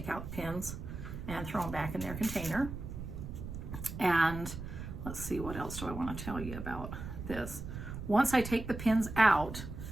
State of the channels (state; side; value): noise; right; rumble, 8 dB below the sound